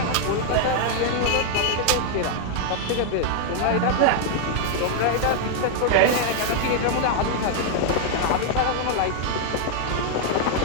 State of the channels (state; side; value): different; both; correlation 0.00